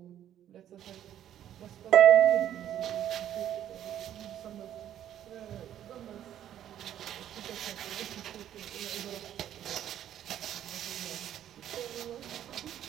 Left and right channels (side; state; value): left; quieter; 11.0 dB